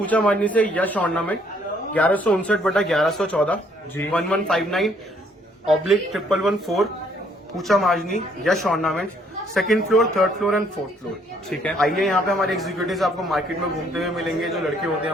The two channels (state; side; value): normal; both; correlation 0.66